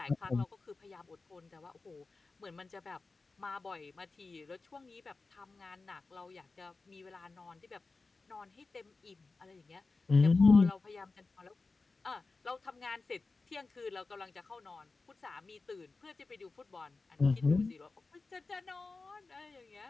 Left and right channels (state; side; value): quieter; right; 3.8 dB